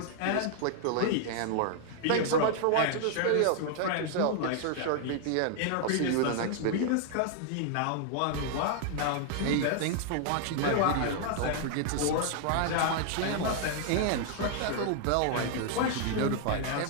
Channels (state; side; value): different; both; correlation 0.00